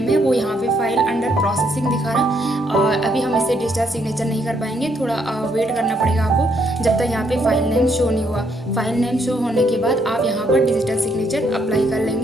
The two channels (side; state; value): both; normal; correlation 0.72